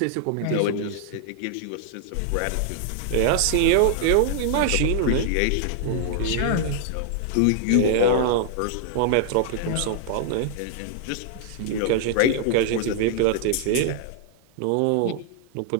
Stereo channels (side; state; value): both; different; correlation -0.01